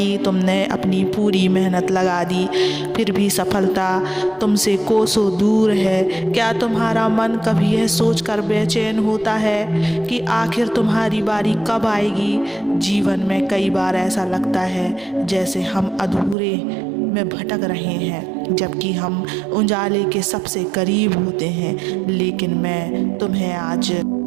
तुमने अपनी पूरी मेहनत लगा दी, फिर भी सफलता तुमसे कोसों दूर है? क्या तुम्हारा मन कभी यह सोचकर बेचैन होता है कि आखिर तुम्हारी बारी कब आएगी? जीवन में कई बार ऐसा लगता है जैसे हम अधूरे में भटक रहे हैं, जबकि हम उजाले के सबसे करीब होते हैं। लेकिन मैं तुम्हें आज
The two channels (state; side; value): drops out; left; at 16.4 s